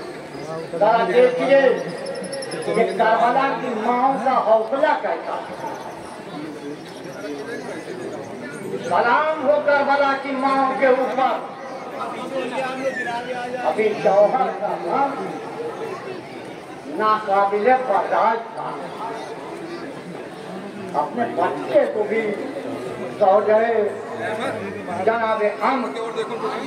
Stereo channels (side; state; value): both; identical; correlation 1.00